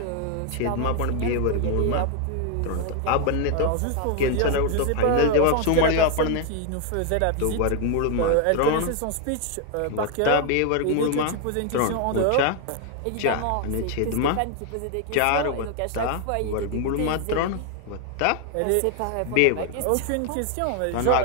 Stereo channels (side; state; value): both; different; correlation 0.00